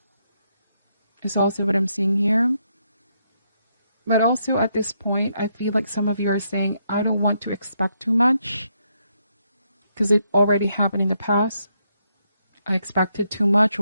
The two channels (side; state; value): both; inverted; correlation -0.77